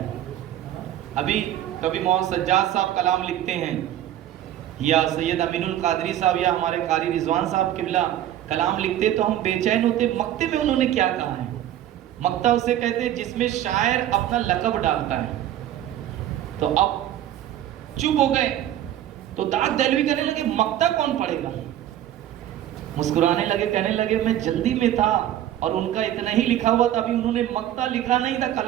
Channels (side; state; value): left; quieter; 12.0 dB